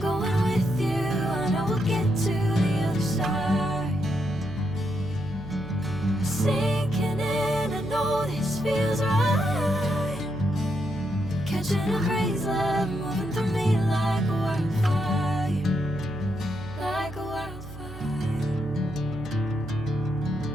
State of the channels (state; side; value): noise; right; hum, 13 dB below the sound